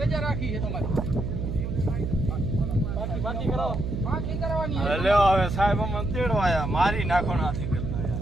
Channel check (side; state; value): right; noise; hum, 3 dB below the sound